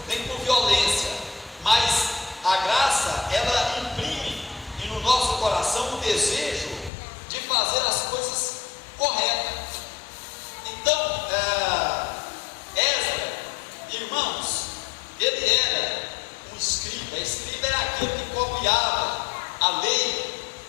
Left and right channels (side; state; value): right; drops out; at 6.9 s